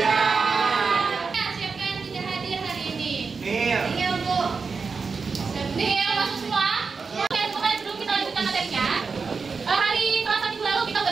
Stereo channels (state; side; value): quieter; left; 4.9 dB